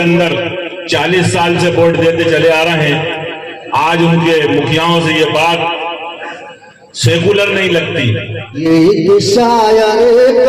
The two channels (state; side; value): identical; both; correlation 1.00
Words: 40 साल से वोट देते चले आ रहे हैं, आज उनके मुखियाओं से ये बात सेकुलर नहीं लगती। ये एक शायर